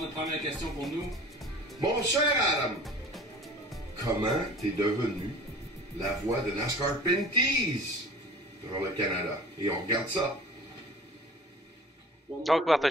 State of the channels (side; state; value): both; normal; correlation 0.43